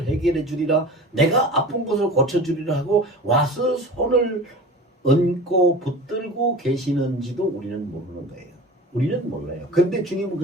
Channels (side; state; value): both; normal; correlation 0.36